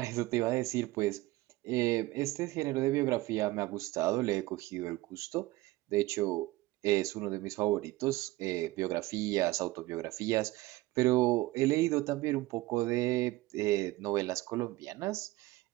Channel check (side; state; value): left; quieter; 18.7 dB